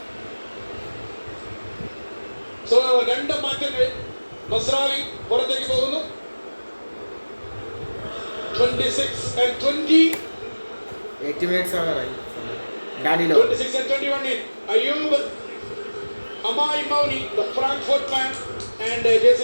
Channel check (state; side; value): inverted; both; correlation -1.00